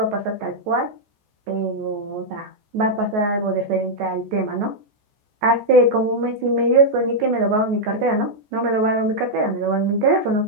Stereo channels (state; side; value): late; left; 14 ms